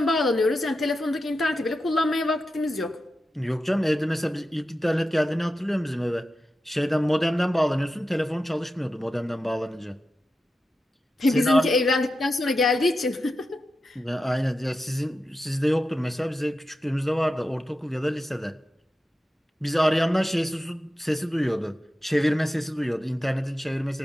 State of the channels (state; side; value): normal; both; correlation 0.90